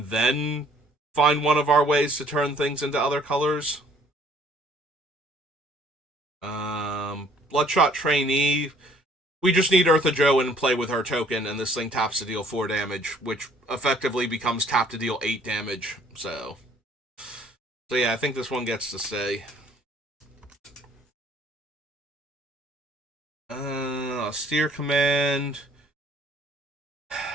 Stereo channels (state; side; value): normal; both; correlation 0.59